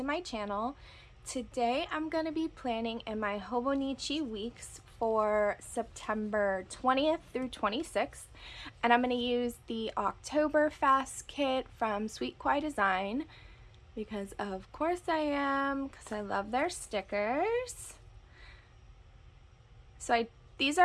my channel. Today I'm going to be planning in my Hobonichi Weeks for September 20th through 26th, and I'm going to use the Octoberfest kit from Sweet Kawaii Design because of course I am, because I love their stickers. So these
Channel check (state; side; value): identical; both; correlation 1.00